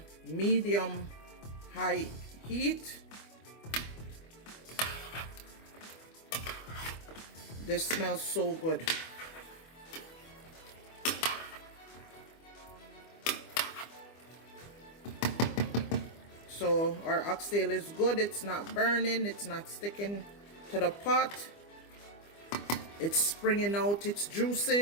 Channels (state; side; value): late; right; 25 ms